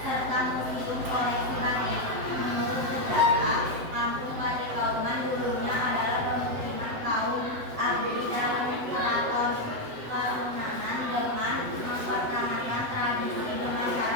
serta museum koleksi batik. Menurut sejarah, kampung Batik Kauman dulunya adalah pemukiman kaum abdi dalam keraton Karunanan dengan mempertahankan tradisi dengan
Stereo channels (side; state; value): left; late; 7.8 ms